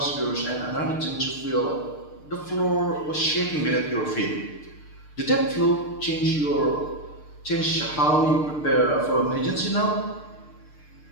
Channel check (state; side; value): late; right; 6.6 ms